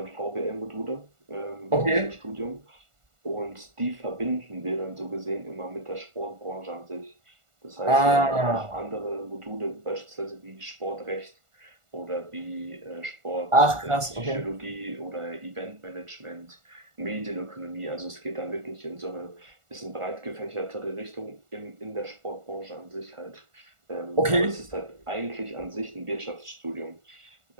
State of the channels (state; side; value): late; left; 1.4 ms